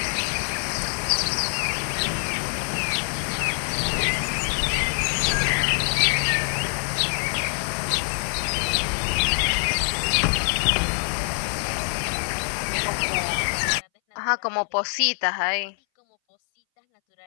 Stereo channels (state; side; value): silent; right; 61 dB below the other